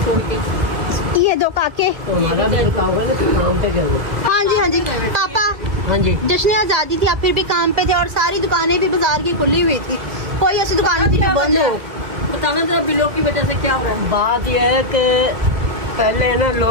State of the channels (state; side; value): late; left; 1.7 ms